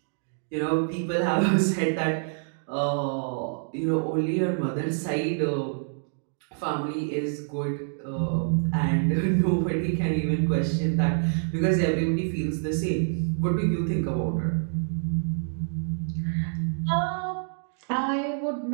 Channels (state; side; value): silent; left; digital silence